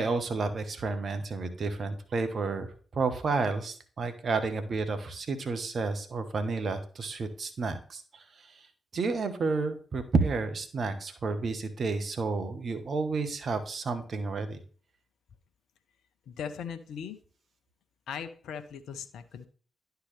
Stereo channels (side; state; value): left; quieter; 3.3 dB